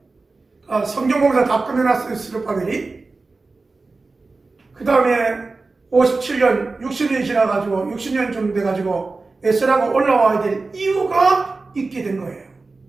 성경공사 다 끝내놨어요, 스룹바벨이. 그 다음에 57년, 60년이 지나가지고 60년쯤 돼가지고 에스라가 올라와야 될 이유가 있게 된 거예요.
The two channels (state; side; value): quieter; left; 3.7 dB